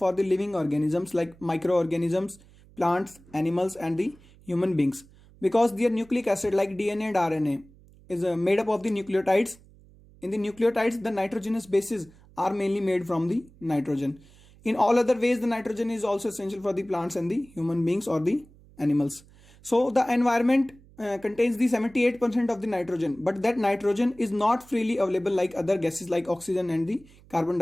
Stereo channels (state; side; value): noise; right; hum, 25 dB below the sound